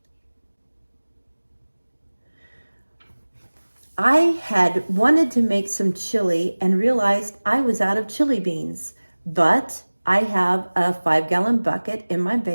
I had wanted to make some chili and realized I was out of chili beans, but I have a 5-gallon bucket in my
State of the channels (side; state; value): both; inverted; correlation -1.00